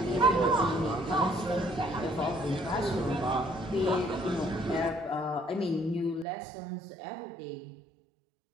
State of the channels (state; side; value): drops out; left; at 6.2 s